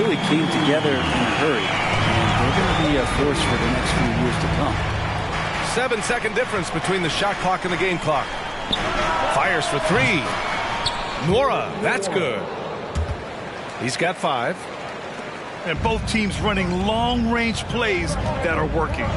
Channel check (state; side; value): identical; both; correlation 1.00